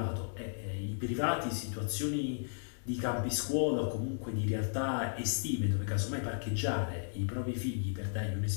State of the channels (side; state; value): right; silent; digital silence